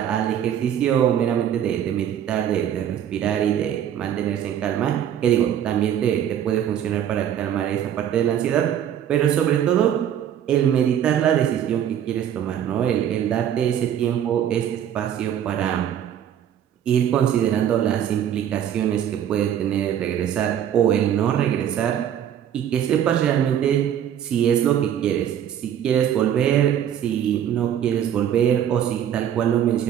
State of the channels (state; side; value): quieter; left; 10.0 dB